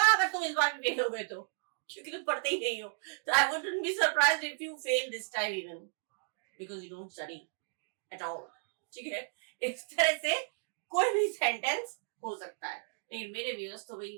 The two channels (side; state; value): left; silent; digital silence